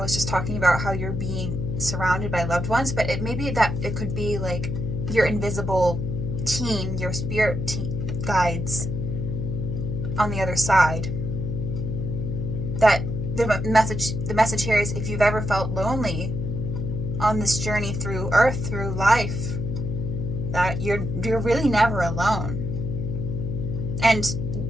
was just talking about how you're being surrounded by loved ones, but it may be that it could be like your invisible team, your spirit guides on the other side. That the message here is, if you've ever felt lonely on this journey through Earth, through life, that you're really never alone. And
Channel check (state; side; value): noise; left; hum, 3 dB below the sound